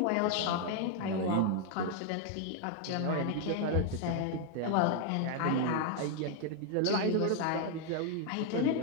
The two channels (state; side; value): different; both; correlation 0.00